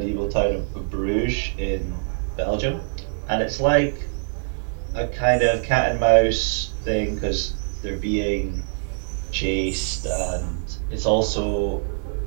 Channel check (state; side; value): silent; left; digital silence